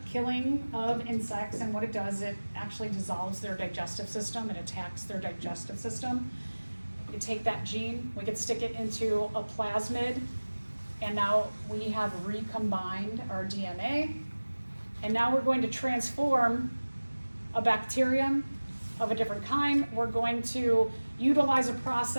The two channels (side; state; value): both; inverted; correlation -1.00